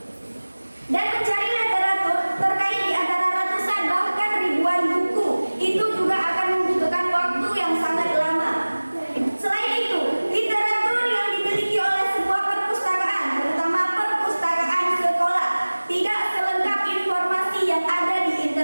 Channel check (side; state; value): both; inverted; correlation -1.00